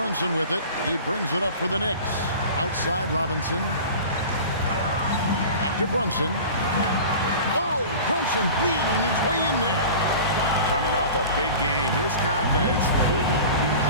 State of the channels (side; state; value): both; inverted; correlation -0.37